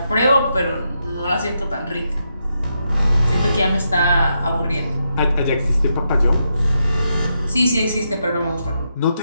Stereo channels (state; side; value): inverted; both; correlation -0.83